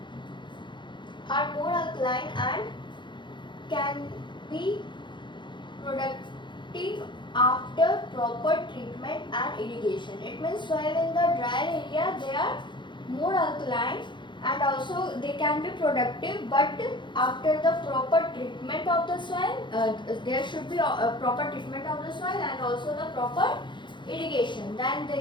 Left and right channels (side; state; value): right; late; 0.23 ms